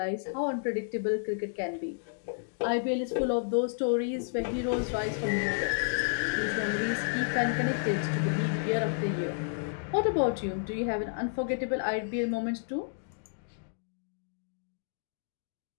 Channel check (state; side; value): silent; right; digital silence